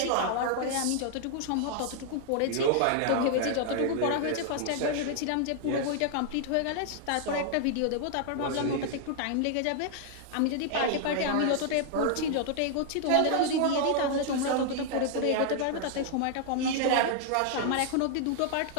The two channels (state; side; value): different; both; correlation 0.00